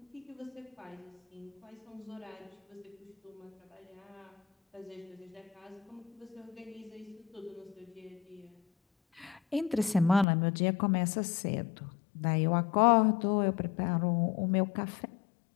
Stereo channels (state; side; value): drops out; right; at 10.2 s